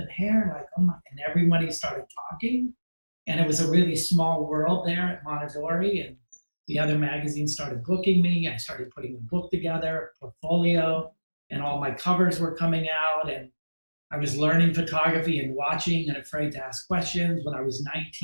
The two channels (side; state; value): both; inverted; correlation -1.00